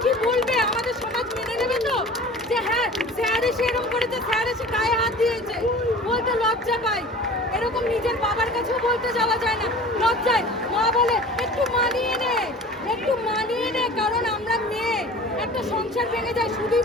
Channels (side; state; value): both; normal; correlation 0.41